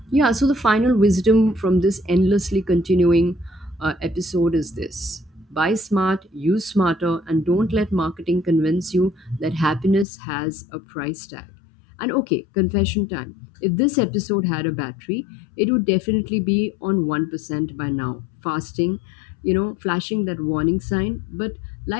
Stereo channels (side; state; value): right; drops out; at 10.1 s